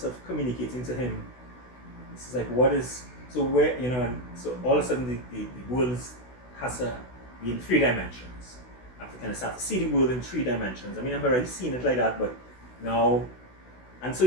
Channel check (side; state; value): right; late; 16 ms